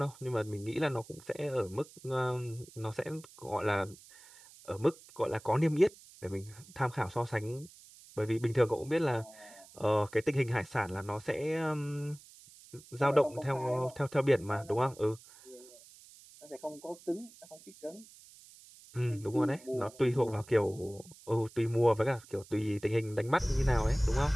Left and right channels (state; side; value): noise; right; hiss, 22 dB below the sound